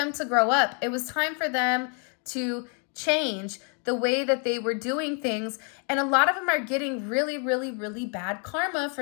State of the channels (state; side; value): quieter; right; 39.0 dB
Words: to grow up. It was time for them to change the way that they were doing things. And a lot of them are getting really, really, really bad karma